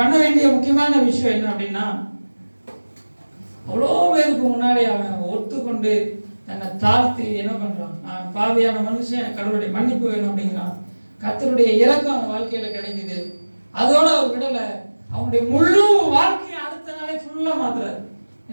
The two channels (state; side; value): inverted; both; correlation -1.00